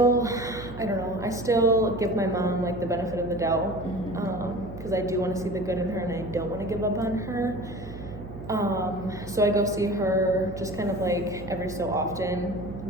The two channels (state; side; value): noise; right; hum, 13 dB below the sound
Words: give my mom like the benefit of the doubt, because I do want to see the good in her and I don't want to give up on her. So I go see her just kind of like every so often,